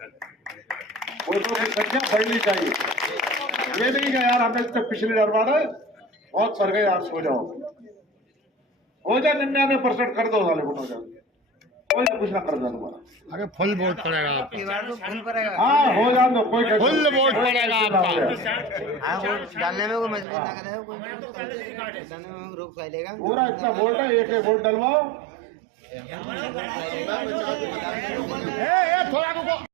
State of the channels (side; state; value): left; drops out; at 20.2 s